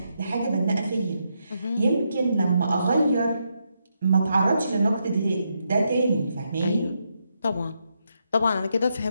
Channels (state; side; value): inverted; both; correlation -0.81